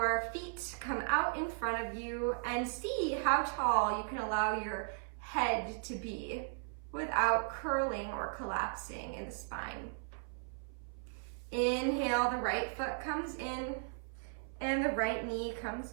feet come out in front of you, and see how tall you can allow your head to be without curling or collapsing in the spine. Inhale, the right foot comes in and the right knee comes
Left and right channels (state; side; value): silent; left; 53 dB below the other